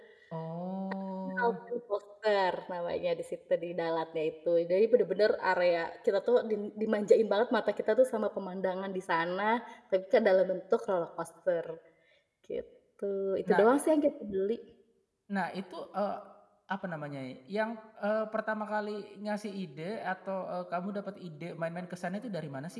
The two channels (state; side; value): identical; both; correlation 1.00